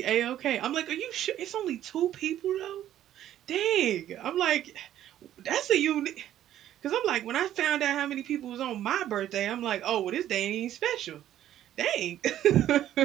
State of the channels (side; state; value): left; quieter; 12.0 dB